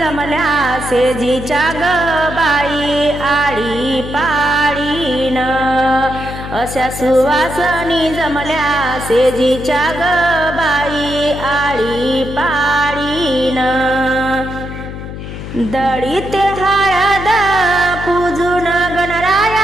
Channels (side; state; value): left; noise; hum, 9 dB below the sound